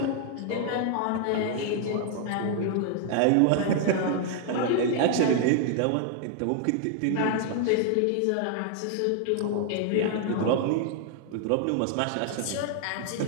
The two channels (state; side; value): different; both; correlation 0.00